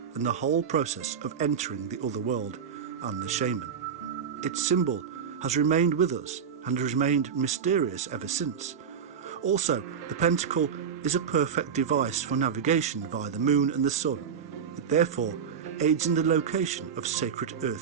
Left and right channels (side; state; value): left; quieter; 7.2 dB